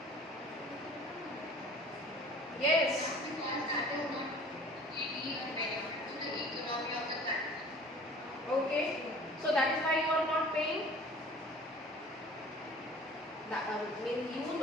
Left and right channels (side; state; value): both; normal; correlation 0.47